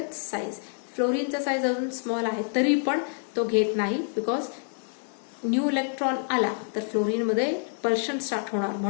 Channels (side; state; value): right; silent; 60 dB below the other